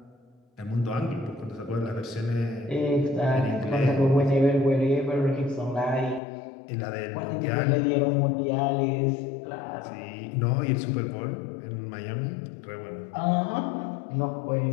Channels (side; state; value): right; drops out; at 6.2 s